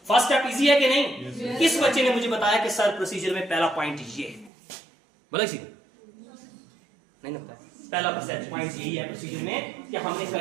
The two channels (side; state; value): left; drops out; at 4.5 s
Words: फर्स्ट स्टेप इजी है कि नहीं? किस बच्चे ने मुझे बताया कि सर प्रोसीजर में पहला पॉइंट ये है, बोला किसी नहीं लगता है। पहला पॉइंट यही है प्रोसीजर में कि हमने